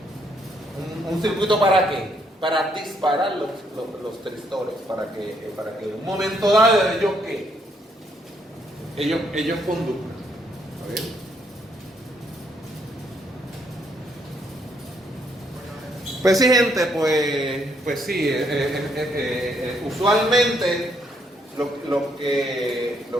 Un circuito ¿para qué? Para disparar los tristores, para que en un momento dado ellos conduzcan. ¿Está bien? Pues sí, gente, pues sí, usualmente lo que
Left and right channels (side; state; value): both; normal; correlation 0.72